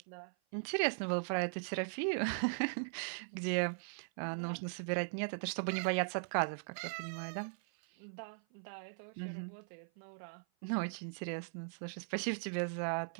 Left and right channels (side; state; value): left; silent; 51 dB below the other